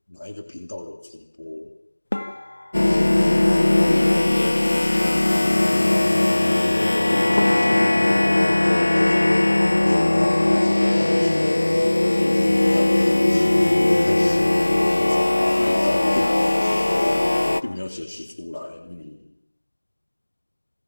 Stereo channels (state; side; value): inverted; both; correlation -1.00